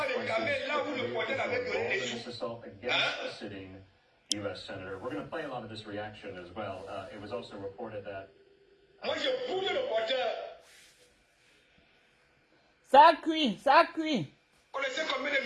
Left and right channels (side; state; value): both; identical; correlation 1.00